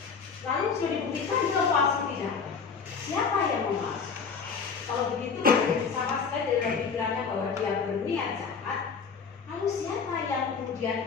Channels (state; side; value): quieter; right; 5.7 dB